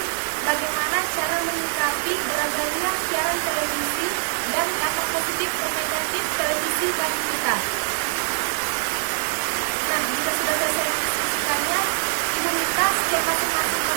bagaimana cara menyikapi beragamnya siaran televisi dan dampak positif dan negatif televisi bagi kita. Nah, jika sudah selesai mendiskusikannya, Ibu minta setiap masing-masing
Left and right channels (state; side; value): silent; left; 61 dB below the other